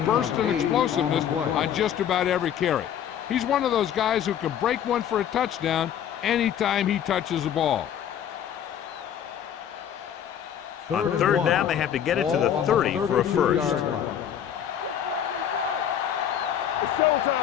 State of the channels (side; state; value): right; quieter; 9.5 dB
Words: burst of and 8 explosiveness on the play. on just about every carry. He's one of those guys who can break one for a touchdown anytime he touches the ball. On 3rd down, they have to get it to the 30 for a first.